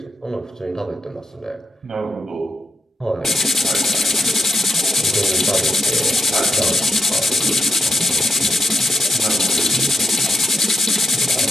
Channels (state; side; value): normal; both; correlation 0.84